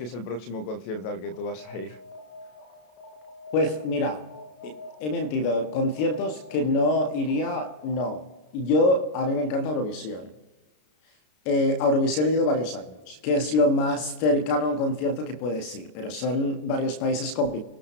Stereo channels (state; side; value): late; right; 33 ms